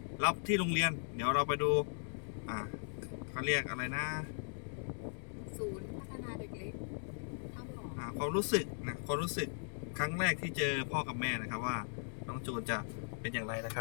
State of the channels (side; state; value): right; silent; digital silence